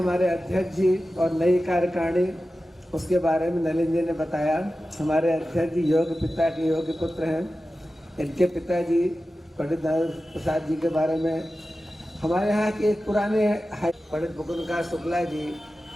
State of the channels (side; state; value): both; normal; correlation 0.94